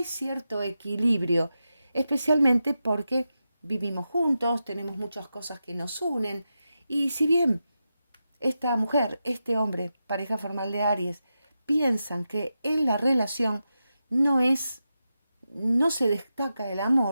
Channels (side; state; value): both; inverted; correlation -0.90